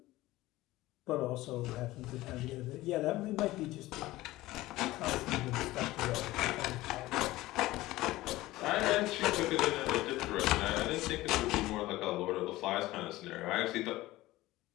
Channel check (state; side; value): quieter; right; 17.7 dB